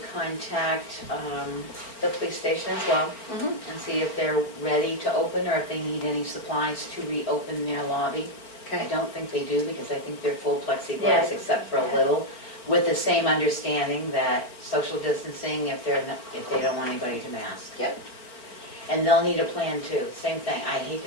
contact the police station as well Mhm. and see if they're ready to open or if they need any supplies to reopen their lobby. I Okay. don't think they do because I think they're full plexiglass Yeah. except for a little, with the same understanding that social distancing if they're not, if they don't want anybody to mask. Yep. And they'll need a plan too. Same thing. I hate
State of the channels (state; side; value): late; right; 4.4 ms